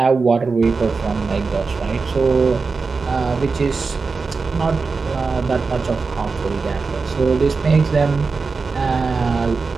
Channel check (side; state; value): left; quieter; 4.5 dB